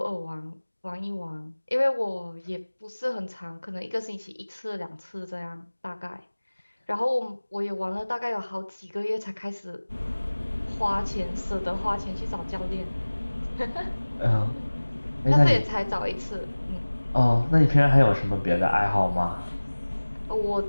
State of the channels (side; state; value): both; inverted; correlation -1.00